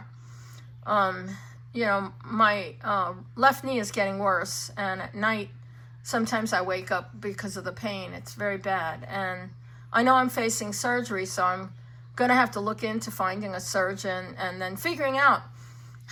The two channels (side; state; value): both; identical; correlation 1.00